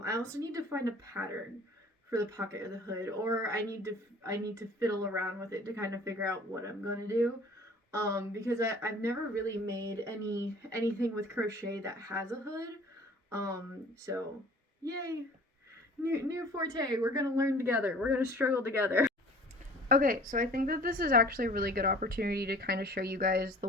also need to find a pattern for the pocket or the hood, or I need to fiddle around with it to kind of figure out what I'm gonna do. Because I've never really made anything with crochet that has a hood. So yay, new forte. We're gonna learn together. We're gonna struggle together. Okay, so I think that this is actually a really good opportunity to kind of show you guys the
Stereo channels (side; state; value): both; normal; correlation 0.48